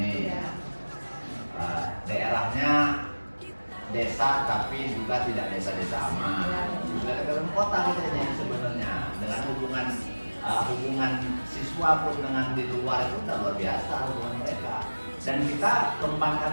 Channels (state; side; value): inverted; both; correlation -1.00